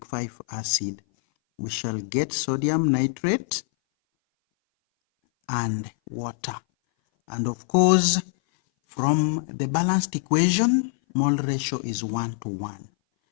5 acid, we shall get sodium nitrate and water. And of course, from the balanced equation, mole ratio is 1:1.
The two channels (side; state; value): right; silent; 59 dB below the other